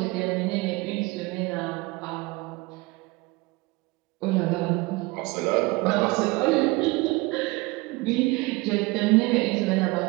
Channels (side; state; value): left; quieter; 23.3 dB